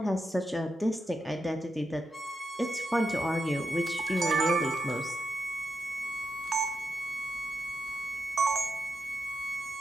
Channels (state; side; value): normal; both; correlation 0.84